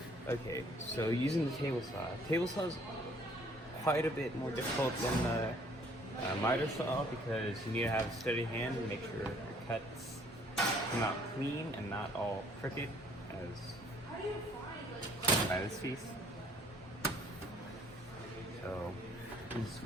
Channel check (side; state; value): both; normal; correlation 0.60